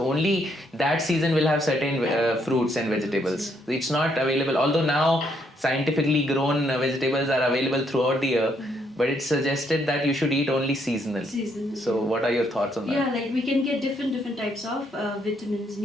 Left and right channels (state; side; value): normal; both; correlation 0.72